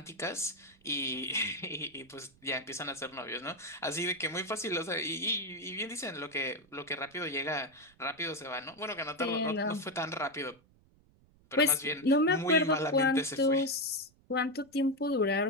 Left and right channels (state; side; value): noise; right; rumble, 30 dB below the sound